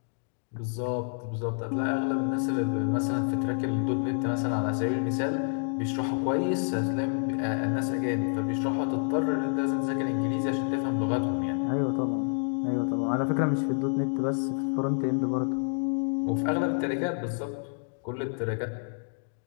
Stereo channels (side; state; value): right; silent; digital silence